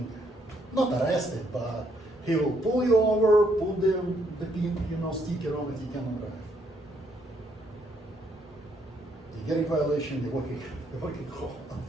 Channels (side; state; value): both; normal; correlation 0.71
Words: not arrested, but he will pull you over, put the pin, sticker on it. You cannot drive. You're getting violation. You're working home.